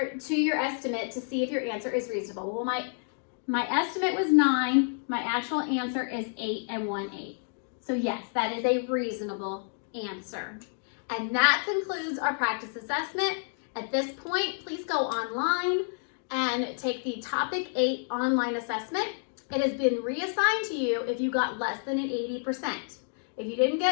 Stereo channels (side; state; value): right; silent; 58 dB below the other